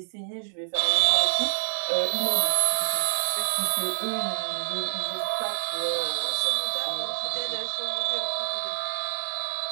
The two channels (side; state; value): left; silent; digital silence